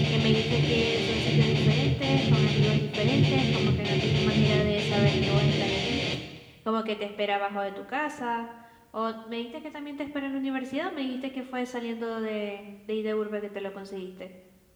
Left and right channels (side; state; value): both; identical; correlation 1.00